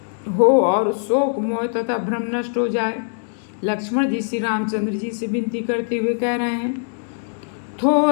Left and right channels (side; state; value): right; silent; digital silence